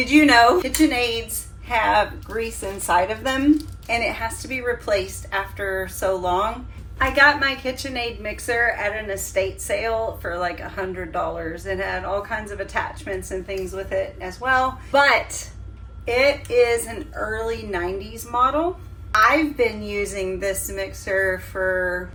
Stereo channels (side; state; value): both; identical; correlation 1.00